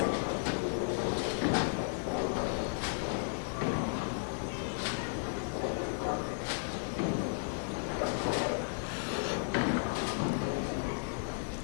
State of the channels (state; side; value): silent; right; digital silence